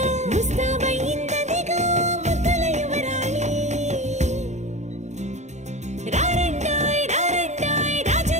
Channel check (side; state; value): left; late; 0.33 ms